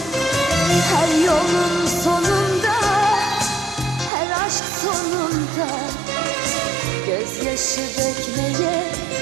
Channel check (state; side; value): drops out; left; at 4.1 s